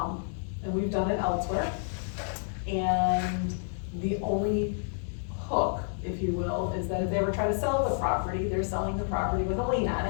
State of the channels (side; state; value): right; silent; digital silence